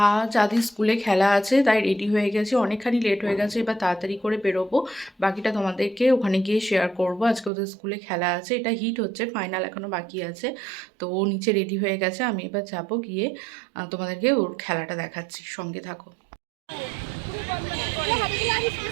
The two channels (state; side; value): drops out; left; at 7.5 s